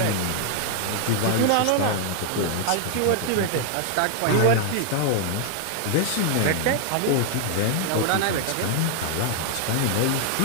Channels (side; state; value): both; different; correlation 0.00